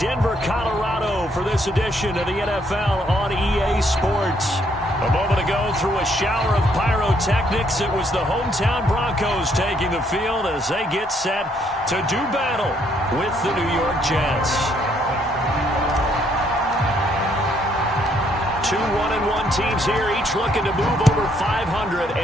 Colorado, for this edition of the NFL on EA Sports. A moment ago, through a shower of pyrotechnics, it was the hometown Broncos taking the field as they get set to do battle with the New York Jets. 2 1-1 teams here, each looking to move over 500,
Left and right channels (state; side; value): normal; both; correlation 0.70